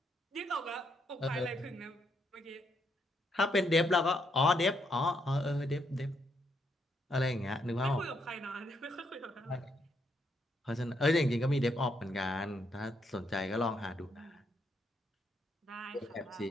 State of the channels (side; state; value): both; normal; correlation 0.76